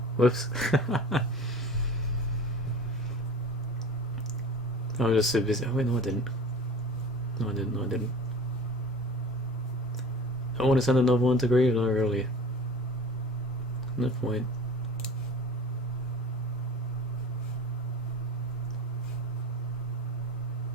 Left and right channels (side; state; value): both; normal; correlation 0.39